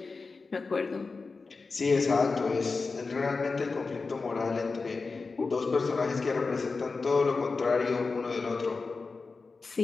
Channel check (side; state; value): right; quieter; 4.2 dB